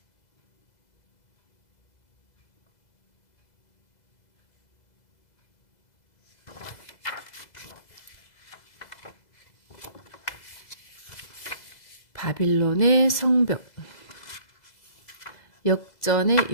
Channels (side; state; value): right; late; 2.0 ms